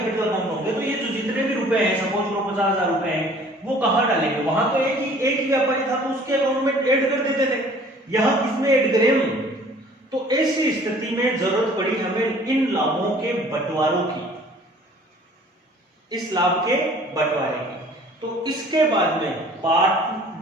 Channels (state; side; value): normal; both; correlation 0.52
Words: अकाउंट होंगे। तो ये जो जितने भी रुपए हैं, सपोज करो 50,000 रुपए हैं, वो कहां डालेंगे, वहां तो एक ही व्यापारी था तो उसके अकाउंट में ऐड कर देते थे, यहां किसमें ऐड करें। तो ऐसी स्थिति में जरूरत पड़ी हमें इन लाभों के बंटवारों की, इस लाभ के बंटवारे की। तो इसके बाद में